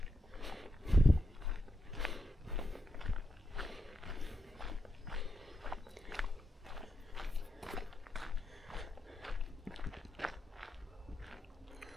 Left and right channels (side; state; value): both; normal; correlation 0.85